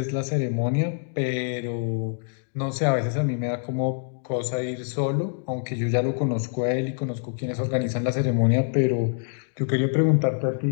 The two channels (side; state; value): right; silent; digital silence